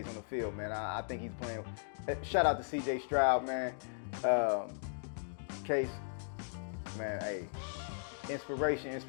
on the field, man. I think he's playing. Shout out to Cj Stroud, man. Kase, man, hey, inspiration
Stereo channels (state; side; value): silent; right; digital silence